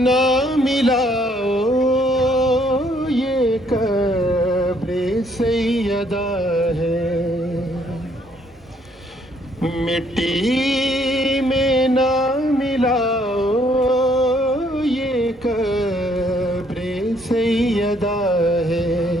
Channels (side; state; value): both; normal; correlation 0.67